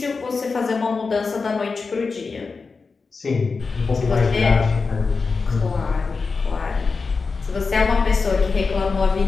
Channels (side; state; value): right; quieter; 4.5 dB